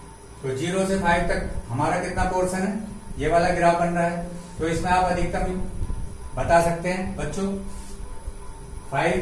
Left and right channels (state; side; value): identical; both; correlation 1.00